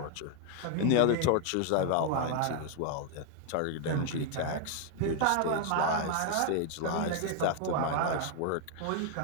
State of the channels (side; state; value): both; different; correlation 0.00